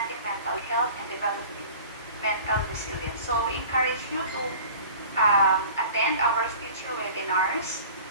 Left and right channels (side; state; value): both; inverted; correlation -0.42